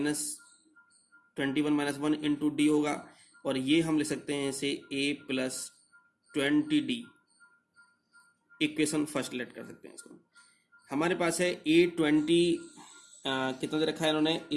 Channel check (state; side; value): identical; both; correlation 1.00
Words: 1 into D होगा, और ये हम लिख सकते हैं इसे a plus 20d। Equation first let कर सकते हैं इसको। हमारे पास है A20 कितना दे रखा है इन्होंने,